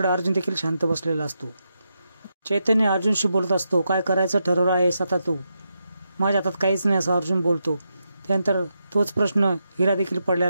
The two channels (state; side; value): inverted; both; correlation -0.84